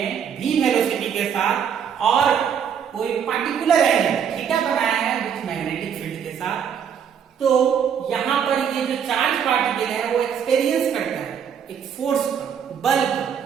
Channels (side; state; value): left; quieter; 7.9 dB